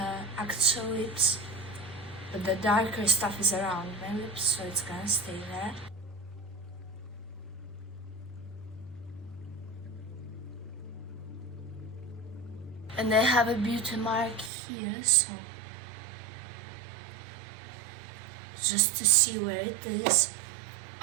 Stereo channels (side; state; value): left; drops out; at 14.5 s